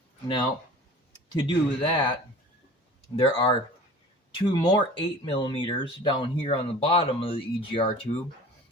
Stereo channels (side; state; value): both; normal; correlation 0.42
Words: Now, to do that, there are 2 more 8mm down here on the bottom of the EGR tube,